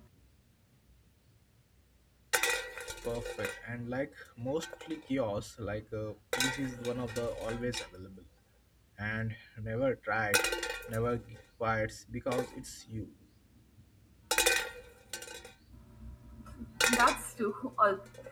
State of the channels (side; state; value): both; identical; correlation 1.00